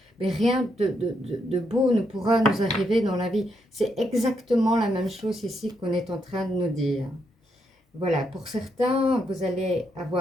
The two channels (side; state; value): both; normal; correlation 0.79